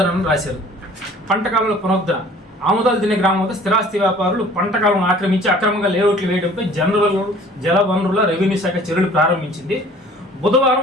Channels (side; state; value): both; normal; correlation 0.51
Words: రాశారు. పంట కాలువల పునరుద్ధరణ ఆముదాలు తినే గ్రామంలో స్థిరాస్తి వ్యాపారులు పంట కాలువను ఆక్రమించి అక్రమంగా లేఅవుట్లు వేయడంపై జల వనరుల రెవెన్యూ శాఖ చర్యలు ప్రారంభించింది.